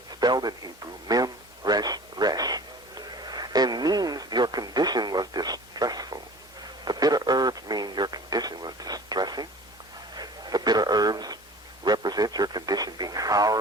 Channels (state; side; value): normal; both; correlation 0.43